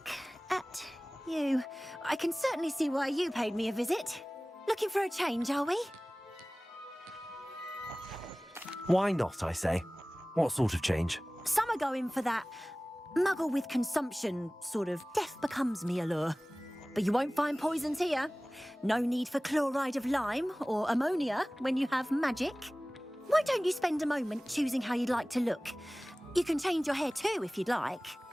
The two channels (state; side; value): normal; both; correlation 0.98